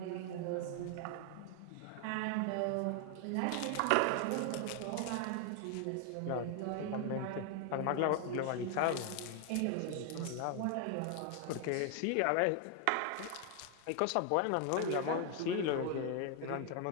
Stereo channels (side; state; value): both; different; correlation 0.00